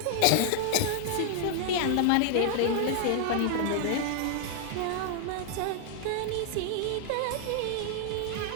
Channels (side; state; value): both; different; correlation 0.00